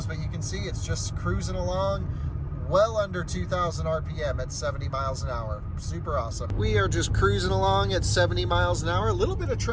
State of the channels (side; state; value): both; identical; correlation 1.00